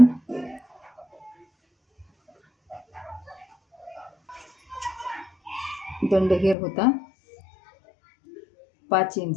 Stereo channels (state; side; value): drops out; right; at 6.6 s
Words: दंडघेर होता 5